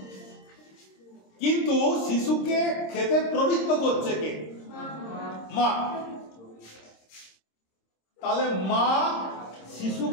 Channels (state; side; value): late; right; 26 ms